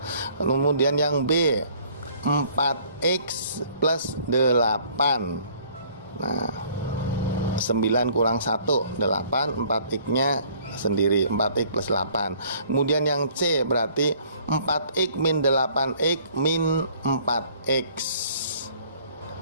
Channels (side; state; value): both; inverted; correlation -0.57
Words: Kemudian yang B, 4x plus 8. Nah, 9 kurang 1 8, 4x nya sendiri, 4x plus 8. Kemudian yang C berarti 4x min 8x min 4x